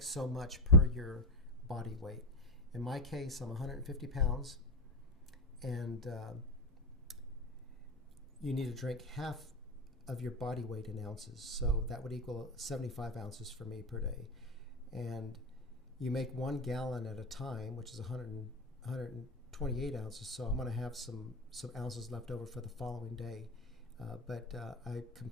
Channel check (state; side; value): normal; both; correlation 0.12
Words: so much per your body weight. In my case, I'm 150 pounds, and you need to drink half of your body weight in ounces, so that would equal 75 ounces for me per day. And you make 1 gallon at a time, which is 128 ounces, so I'm going to have some ounces left over for the following day, but I